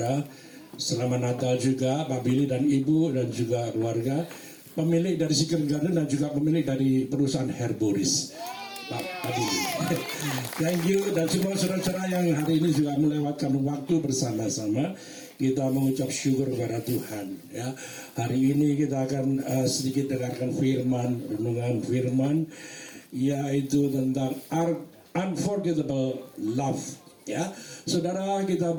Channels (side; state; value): both; identical; correlation 1.00